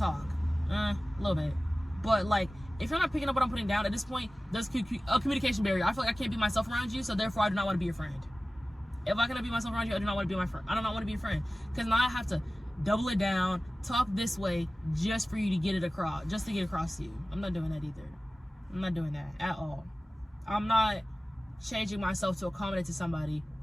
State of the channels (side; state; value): both; normal; correlation 0.97